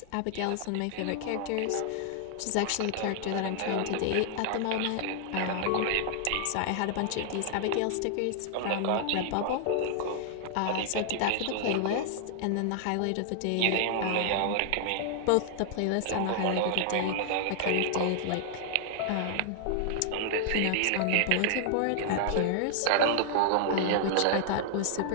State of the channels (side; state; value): both; different; correlation -0.01